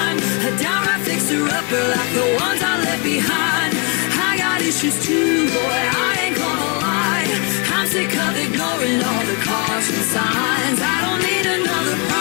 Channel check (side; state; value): right; quieter; 32.8 dB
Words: A downright fixer-upper like the ones I left behind. I got issues too, boy, I ain't gonna lie. I'm sick of ignoring all the caution signs. I don't need another